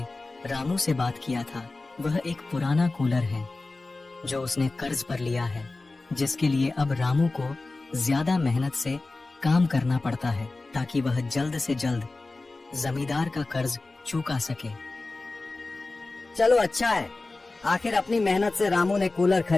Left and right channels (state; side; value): quieter; right; 3.3 dB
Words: रामू से बात किया था। वह एक पुराना कूलर है जो उसने कर्ज पर लिया है, जिसके लिए अब रामू को ज्यादा मेहनत से काम करना पड़ता है ताकि वह जल्द से जल्द जमींदार का कर्ज चुका सके। चलो अच्छा है, आखिर अपनी मेहनत से रामू ने कूलर